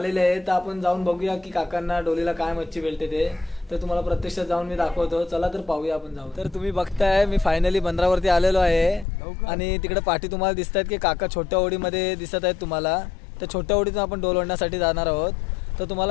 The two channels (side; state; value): right; drops out; at 9.1 s